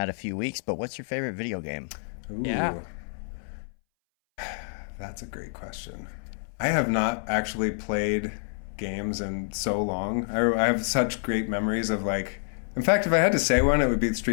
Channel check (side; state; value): right; silent; 60 dB below the other